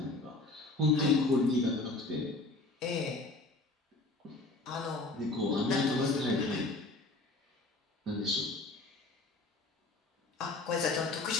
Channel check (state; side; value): quieter; right; 3.1 dB